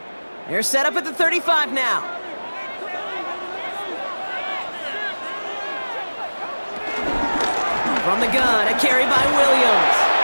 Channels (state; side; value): inverted; both; correlation -1.00